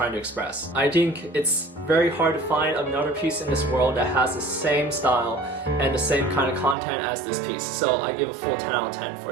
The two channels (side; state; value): left; drops out; at 6.8 s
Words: to express. I think it's very hard to find another piece in this world that has the same style and the same kind of content as this piece, so I give a full 10 out of 10